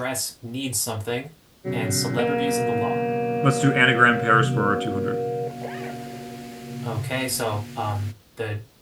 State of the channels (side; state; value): both; identical; correlation 1.00